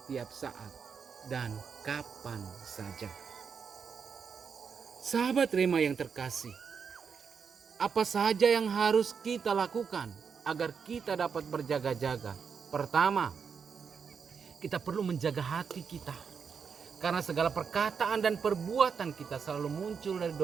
saat dan kapan saja. Sahabat Rema yang terkasih, apa saja yang harus kita lakukan agar kita dapat berjaga-jaga? Pertama, kita perlu menjaga hati kita, karena segala perkataan dan perbuatan kita selalu muncul dari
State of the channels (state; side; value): quieter; left; 6.3 dB